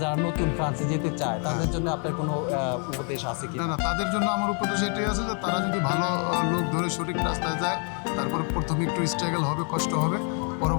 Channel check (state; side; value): quieter; right; 40.0 dB